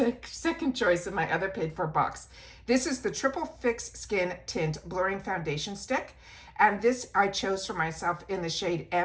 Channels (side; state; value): both; identical; correlation 1.00